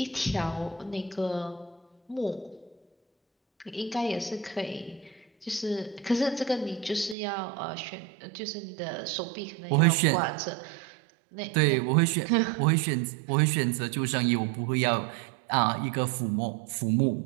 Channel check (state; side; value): drops out; left; at 7.2 s